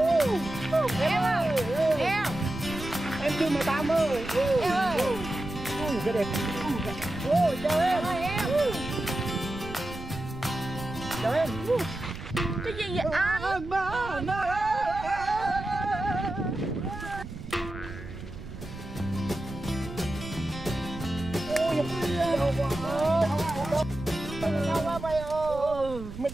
Em ơi, Em. em chưa 18 ơi. Em ơi. Cái đẹp. Ôi trời Em ơi. ơi em. Chào em. Cái gì vậy anh? Sao quá mày ơi? Mày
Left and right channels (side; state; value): right; noise; rumble, 11 dB below the sound